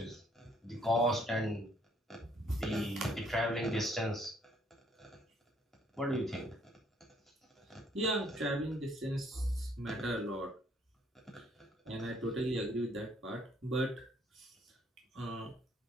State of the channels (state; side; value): normal; both; correlation 0.65